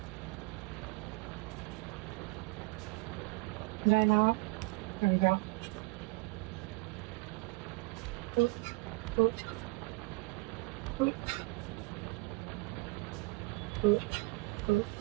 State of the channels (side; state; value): left; quieter; 25.6 dB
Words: Did I not? There we go. Oop, oop, oop, oop, oop,